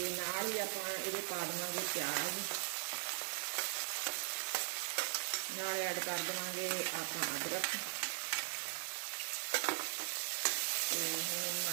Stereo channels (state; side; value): silent; left; digital silence